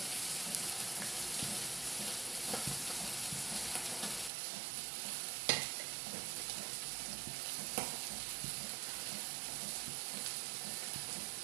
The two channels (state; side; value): drops out; left; at 4.3 s